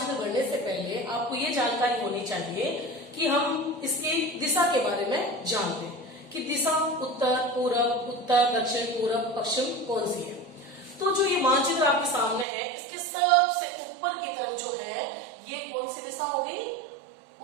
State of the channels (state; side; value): drops out; left; at 12.5 s